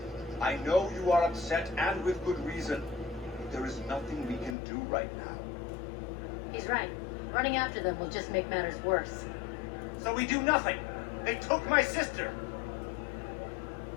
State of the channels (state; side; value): drops out; right; at 4.5 s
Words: I know you are upset, and with good reason. But there is nothing we can do right now. He's right. Running after them will just make matters worse. So we do nothing. They took my sister.